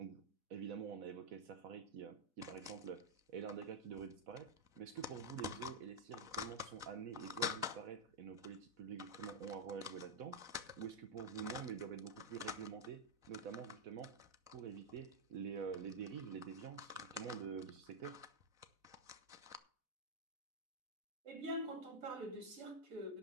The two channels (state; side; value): late; left; 4.0 ms